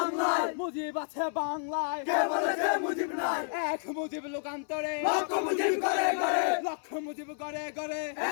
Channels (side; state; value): right; silent; 57 dB below the other